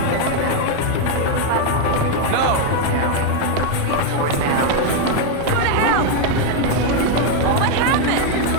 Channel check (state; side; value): different; both; correlation 0.01